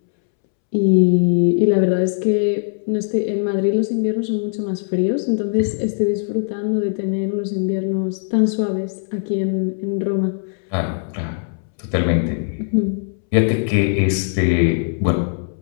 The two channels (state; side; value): silent; right; 66 dB below the other